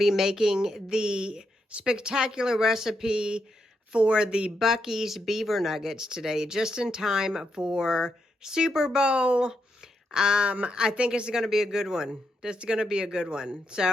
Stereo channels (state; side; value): normal; both; correlation 0.82